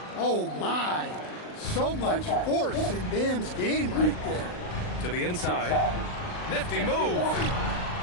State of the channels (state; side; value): late; right; 39 ms